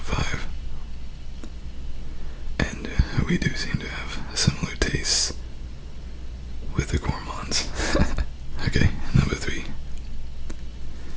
5. And we do seem to have similar tastes with the gourmands. Okay, number 3.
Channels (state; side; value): identical; both; correlation 1.00